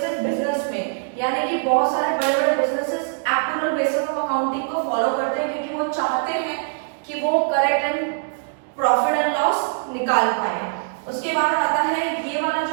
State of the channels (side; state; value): left; silent; digital silence